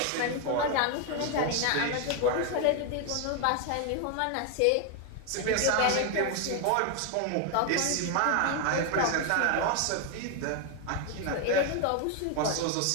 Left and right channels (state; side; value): different; both; correlation 0.01